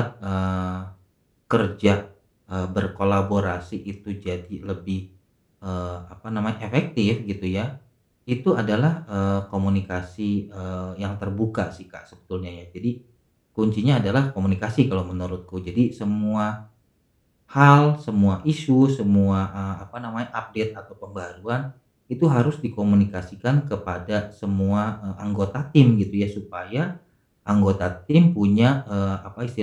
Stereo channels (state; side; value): identical; both; correlation 1.00